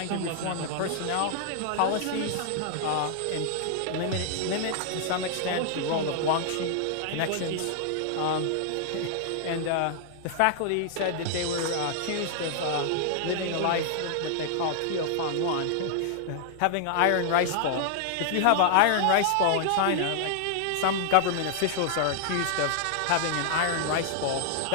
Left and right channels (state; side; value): different; both; correlation -0.01